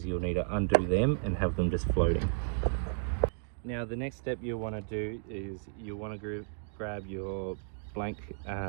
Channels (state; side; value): silent; left; digital silence